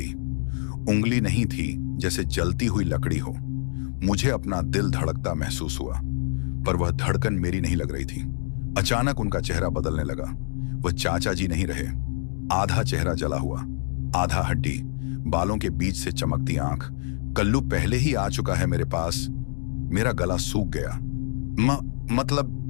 उंगली नहीं थी, जैसे जलती हुई लकड़ी हो। मुझे अपना दिल धड़कता महसूस हुआ, पर वह धड़कन मेरी नहीं लग रही थी। अचानक उनका चेहरा बदलने लगा। वह चाचा जी नहीं रहे। आधा चेहरा जला हुआ, आधा हड्डी, बालों के बीच से चमकती आंख। कल्लू पहले ही आ चुका है मेरे पास। मेरा गला सूख गया।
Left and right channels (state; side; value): silent; right; digital silence